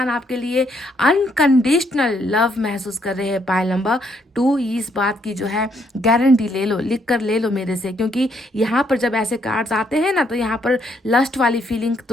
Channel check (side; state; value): both; normal; correlation 0.72